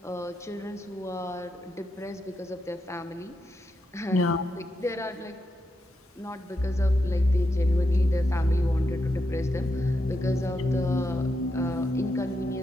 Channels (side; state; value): both; normal; correlation 0.85